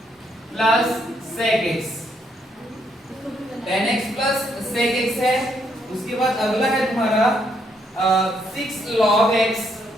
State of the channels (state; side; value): normal; both; correlation 0.73